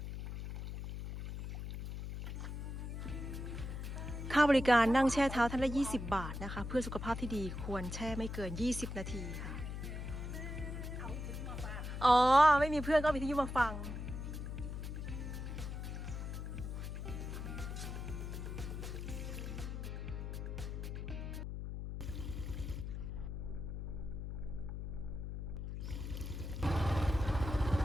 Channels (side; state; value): left; noise; hum, 6 dB below the sound